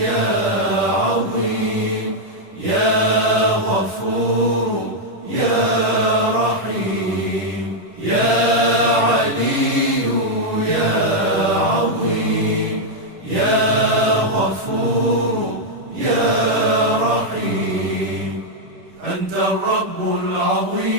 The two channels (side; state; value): left; late; 10 ms